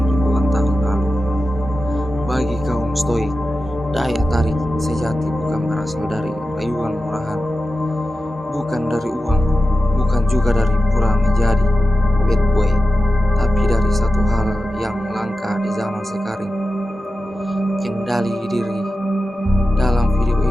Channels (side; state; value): both; normal; correlation 0.92